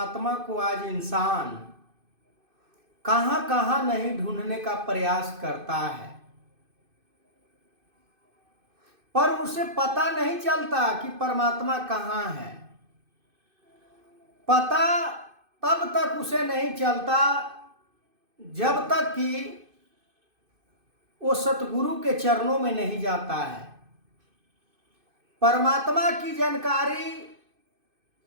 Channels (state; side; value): late; left; 2.5 ms